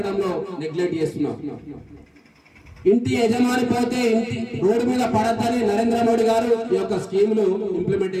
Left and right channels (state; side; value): identical; both; correlation 1.00